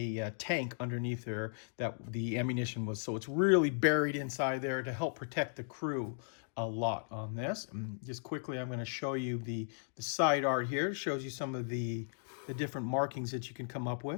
tank underneath there that the ammunition was. So it's really buried inside there to help protect the crew a lot on this. And just quickly, I'm going to show you the side art here. It shows you some of the different markings that you can come up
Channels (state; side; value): silent; right; digital silence